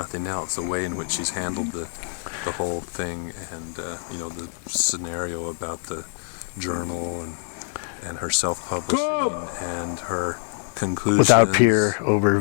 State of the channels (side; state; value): right; silent; 57 dB below the other